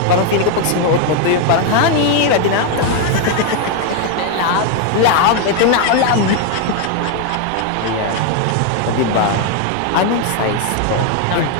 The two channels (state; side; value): different; both; correlation 0.01